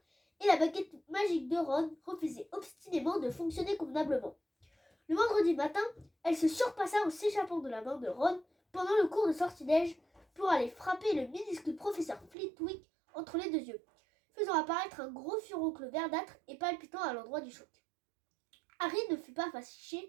et la baguette magique de Ron refusait obstinément de fonctionner convenablement. Le vendredi matin, elle se surpassa en s'échappant de la main de Ron pendant le cours de sortilège pour aller frapper le minuscule professeur Flitwick entre les deux yeux, faisant apparaître un gros furoncle verdâtre et palpitant à l'endroit du choc. Harry ne fut pas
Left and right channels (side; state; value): left; drops out; at 12.3 s